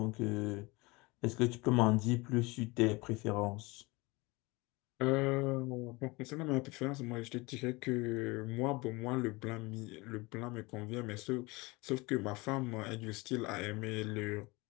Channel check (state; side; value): quieter; right; 24.2 dB